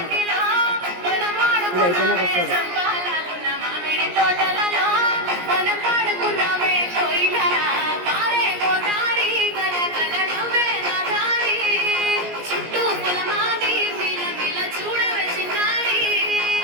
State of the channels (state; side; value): late; left; 17 ms